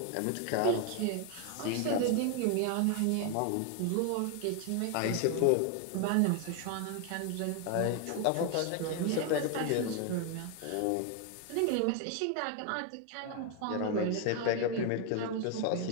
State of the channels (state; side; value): different; both; correlation 0.01